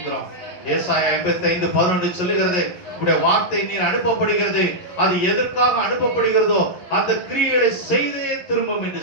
ஏசாயா 55:11 சொல்லுகிறது, உடைய வார்த்தை நீர் அனுப்பப்படுகிறது, அது எதற்காக அனுப்பப்படுகிறதோ அந்த கிரியைகளை செய்தே திரும்பும் என்று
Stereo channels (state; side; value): late; right; 11 ms